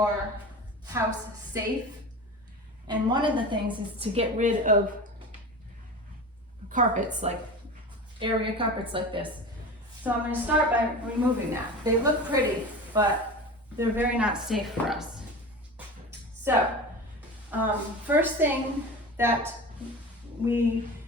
house safe. And one of the things is to get rid of carpets, like area carpets like this. So I'm going to start by removing that. They look pretty, but they're very not safe for us. So first thing that we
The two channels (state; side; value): normal; both; correlation 0.31